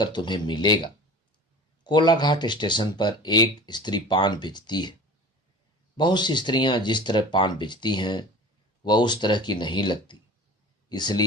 तुम्हें मिलेगा। कोलाघाट स्टेशन पर एक स्त्री पान बेचती है। बहुत सी स्त्रियां जिस तरह पान बेचती हैं वह उस तरह की नहीं लगती,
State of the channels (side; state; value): both; normal; correlation 0.39